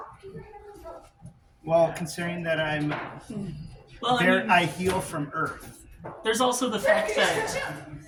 Well, considering that I'm Well, there, I heal from earth. there's also the fact that,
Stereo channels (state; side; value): identical; both; correlation 1.00